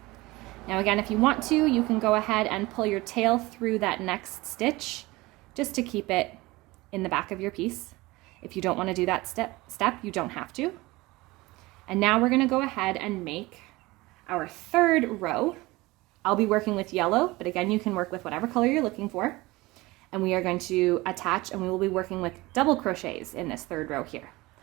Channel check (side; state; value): left; quieter; 21.0 dB